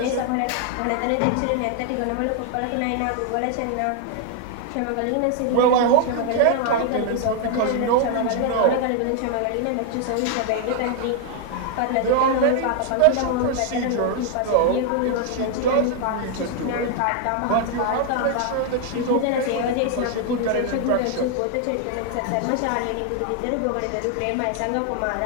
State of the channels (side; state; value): both; different; correlation 0.00